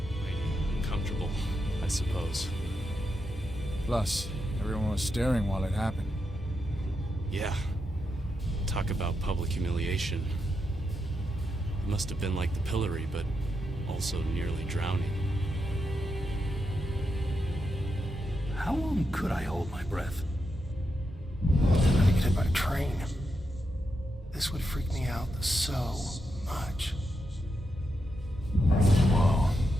Uncomfortable, I suppose. Plus, everyone was staring while it happened. Yeah. Talk about public humiliation. It must have been like the pillory, but also nearly drowning. How long could I hold my breath? I'm gonna get hit by a train. This would freak me out so much. Whoa.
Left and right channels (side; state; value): both; normal; correlation 0.84